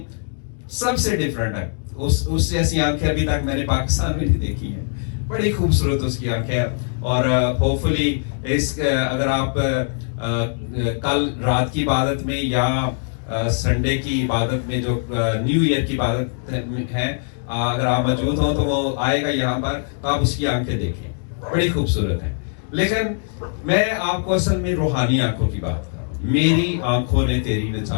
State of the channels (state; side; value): silent; right; 65 dB below the other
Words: सबसे डिफरेंट है, उस जैसी आंखें अभी तक मैंने पाकिस्तान में नहीं देखी हैं। बड़ी खूबसूरत उसकी आंखें। और होपफुली अगर आप कल रात की इबादत में या संडे की इबादत में, जो न्यू ईयर की इबादत है, अगर आप मौजूद हो तो वो आएगा यहाँ पर, तो आप उसकी आंखें देखें, बड़ी खूबसूरत है। लेकिन मैं आपको असल में रूहानी आंखों की बात कर रहा हूँ। मेरी आंखों ने तेरी